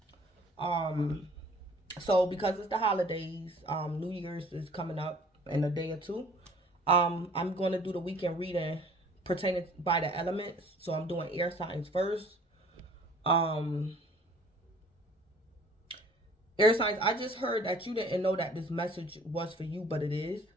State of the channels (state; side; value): normal; both; correlation 0.52